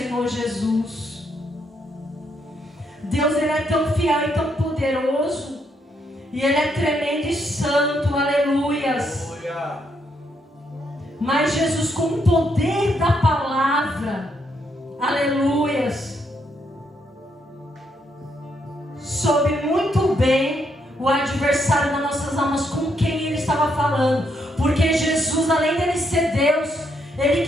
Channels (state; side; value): normal; both; correlation 0.76